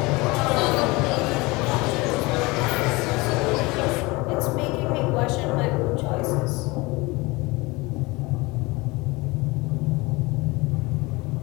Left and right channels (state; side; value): quieter; right; 23.7 dB